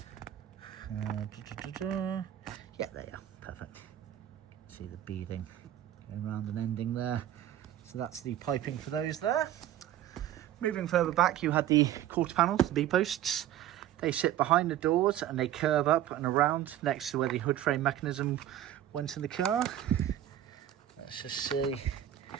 Yeah, there you are. Perfect. See the beading going around and ending there. So that's the piping for those there. Moving further back, you had the quarter panels, the B-posts. They sit behind the doors and they curve up and around next to where the hood frame mechanism went in the car. Let's just see.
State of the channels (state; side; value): quieter; left; 11.9 dB